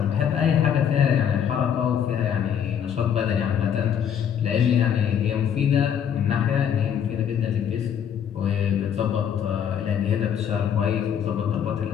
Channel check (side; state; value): right; quieter; 8.5 dB